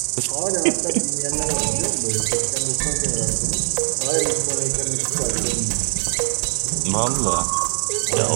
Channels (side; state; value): left; silent; digital silence